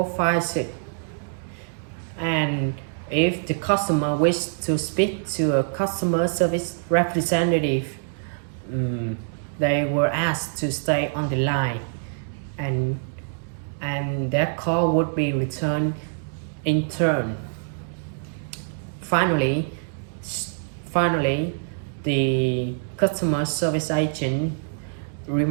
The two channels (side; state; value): left; silent; digital silence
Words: And if the customer wished to speak to a customer service representative, they were asked to stay on the line, and their call would be returned in turn. Finally, the customer service agent